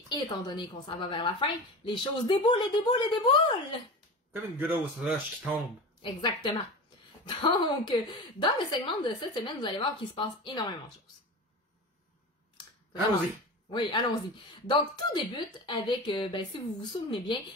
étant donné qu'on s'en va vers la fin, les choses déboulent et déboulent et déboulent. Comme une grosse roche qui tombe. Exactement. Donc, dans le segment de cette semaine, vous allez voir qu'il se passe énormément de choses. Allons-y. Oui, allons-y. Donc, tout débute avec, si vous vous souvenez bien,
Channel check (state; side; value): normal; both; correlation 0.29